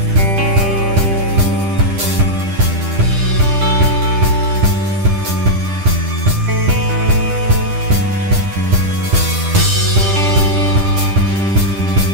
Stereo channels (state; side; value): late; left; 10 ms